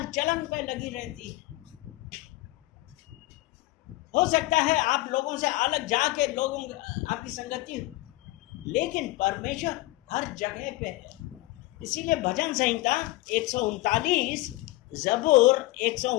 चलन पे लगी रहती है। हो सकता है आप लोगों से अलग जाके लोगों आपकी संगति हो, लेकिन परमेश्वर हर जगह पे है। इसीलिए भजन संहिता 139, ज़बूर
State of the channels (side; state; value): right; quieter; 19.2 dB